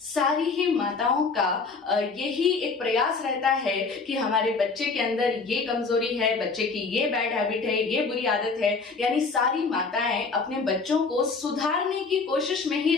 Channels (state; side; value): quieter; right; 4.4 dB